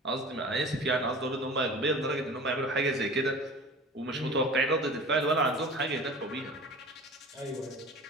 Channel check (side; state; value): both; normal; correlation 0.39